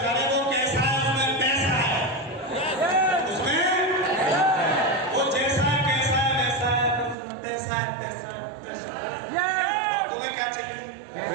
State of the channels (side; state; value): left; drops out; at 7.2 s